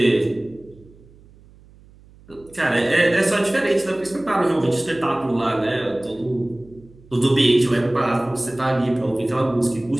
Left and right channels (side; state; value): right; noise; hum, 25 dB below the sound